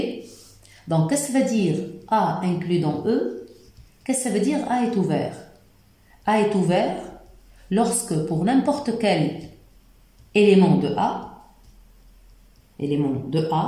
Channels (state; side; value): identical; both; correlation 1.00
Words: Donc, qu'est-ce que ça veut dire A inclus dans E? Qu'est-ce que ça veut dire A est ouvert? A est ouvert lorsque pour n'importe quel élément de